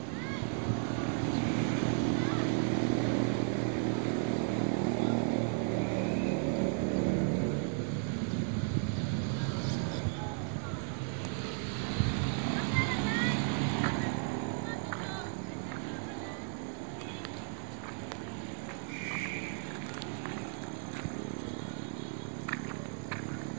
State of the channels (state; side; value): silent; left; 55 dB below the other